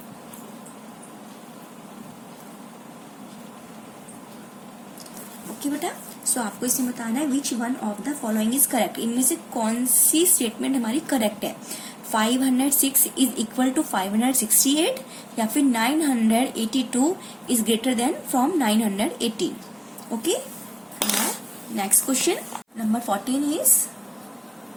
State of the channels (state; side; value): identical; both; correlation 1.00